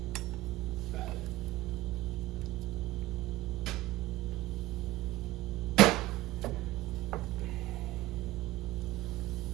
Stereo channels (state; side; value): quieter; left; 17.3 dB